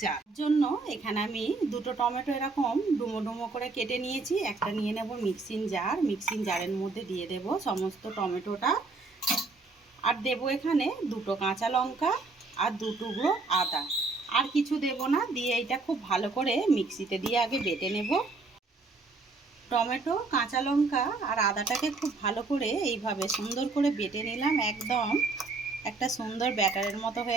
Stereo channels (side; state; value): left; quieter; 3.8 dB